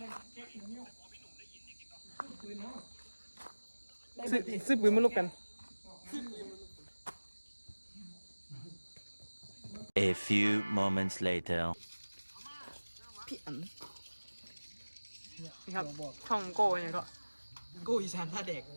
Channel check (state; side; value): inverted; both; correlation -1.00